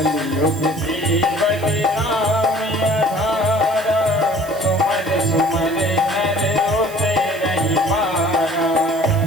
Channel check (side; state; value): right; noise; hiss, 18 dB below the sound